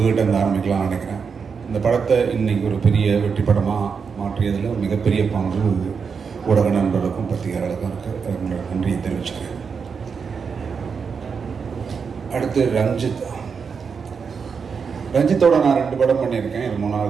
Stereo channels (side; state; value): left; quieter; 5.9 dB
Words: இருந்து ஆரம்பிக்கலாம்னு நினைக்கிறேன். இந்த படத்தை இன்னைக்கு ஒரு பெரிய வெற்றி படமாக மாற்றியதில் மிகப்பெரிய பங்கு ஊடக நண்பர்களுக்கும் பத்திரிகையாளர்களுக்கும் இருக்குது. உங்களோட நன்றியை தெரிவிச்சுக்கிறேன். அடுத்து ரஞ்சித்தோட நான் 2 படம் பண்ணியிருக்கேன். இது